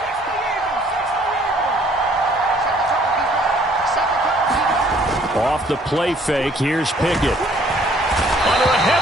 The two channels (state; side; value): normal; both; correlation 0.60